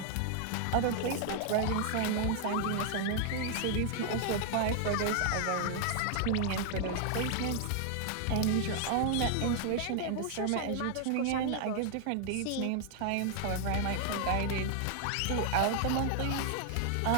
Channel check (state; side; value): different; both; correlation 0.00